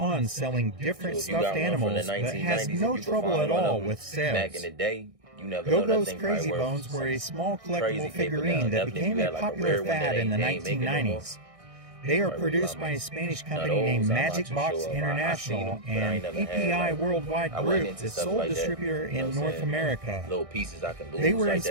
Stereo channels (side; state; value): left; late; 1.6 ms